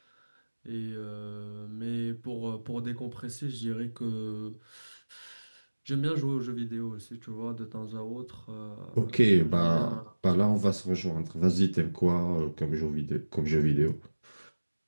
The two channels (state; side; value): inverted; both; correlation -1.00